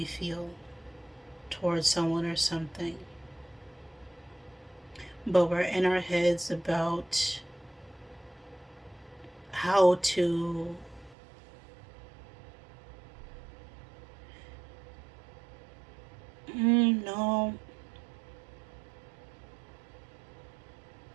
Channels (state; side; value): drops out; left; at 11.2 s